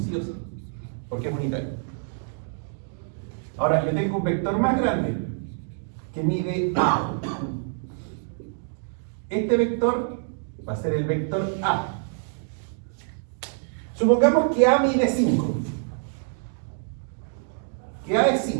sí o sí, porque es unitario. Ahora, yo tengo un vector más grande que mide A. Este vector va a ser el vector A. Supongamos que A mide 5. Que A es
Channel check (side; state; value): left; silent; digital silence